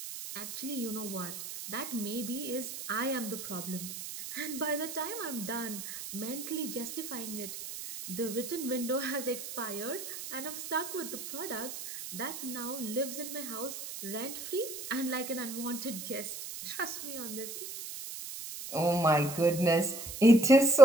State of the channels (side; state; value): right; noise; hiss, 9 dB below the sound